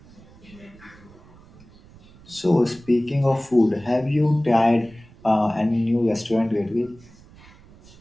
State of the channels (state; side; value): noise; right; rumble, 24 dB below the sound